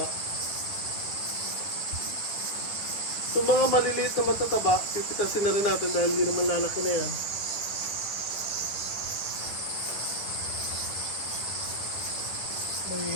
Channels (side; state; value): right; late; 10 ms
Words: So mga maliliit na matataba, pipitasin na rin natin dahil hindi naman lalaki na yan.